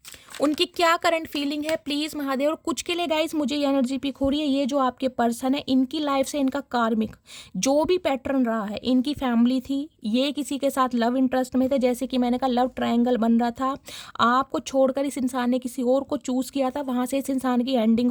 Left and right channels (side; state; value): both; identical; correlation 1.00